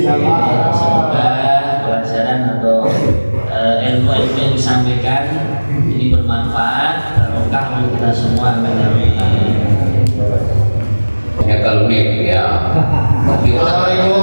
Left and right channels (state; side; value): inverted; both; correlation -1.00